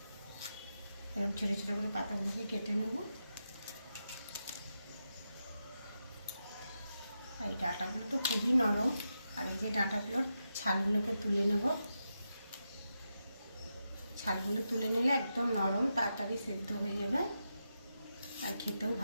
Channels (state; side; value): inverted; both; correlation -0.87